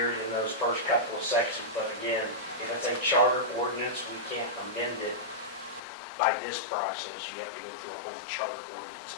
in those first couple of sections, but again, if it's a charter ordinance, we can't amend it by this process. You have to go through a whole charter ordinance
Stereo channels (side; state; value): right; drops out; at 5.8 s